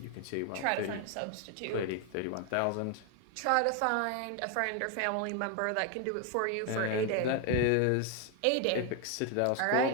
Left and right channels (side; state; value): both; different; correlation 0.01